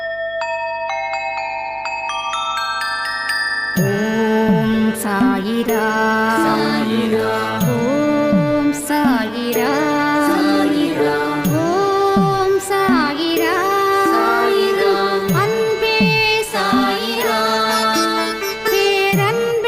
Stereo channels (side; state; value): right; noise; hum, 27 dB below the sound